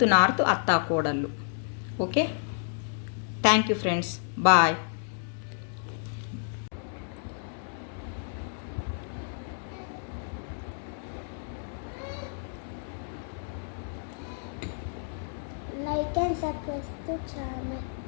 north అత్తా కోడళ్ళు. Okay, thank you friends, bye. Like and subscribe to channel.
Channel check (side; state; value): right; silent; digital silence